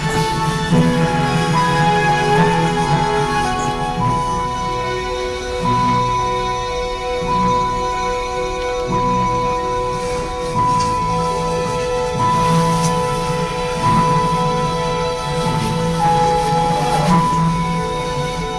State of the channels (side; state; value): both; identical; correlation 1.00